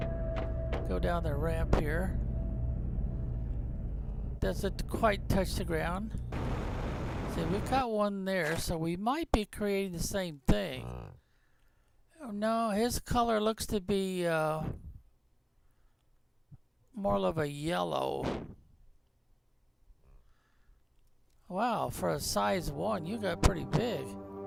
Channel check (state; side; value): identical; both; correlation 1.00